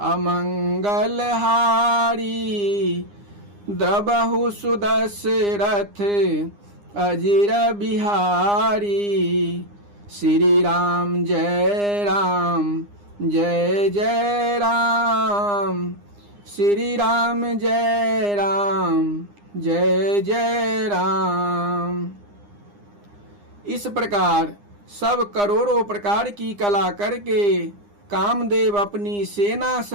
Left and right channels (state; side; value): late; left; 9.8 ms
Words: अमंगल हारी द्रबहु सुदशरथ अजिर बिहारी। श्री राम जय राम जय जय राम। श्री राम जय राम जय जय राम। इस प्रकार सब करोड़ों प्रकार की कला करके कामदेव अपनी सेना